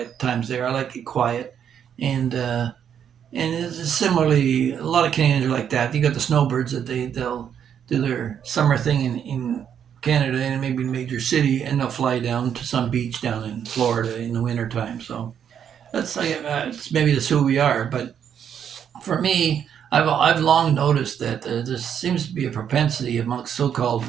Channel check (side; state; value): left; quieter; 8.6 dB